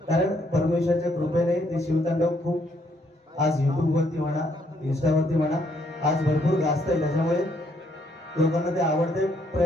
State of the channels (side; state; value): both; normal; correlation 0.70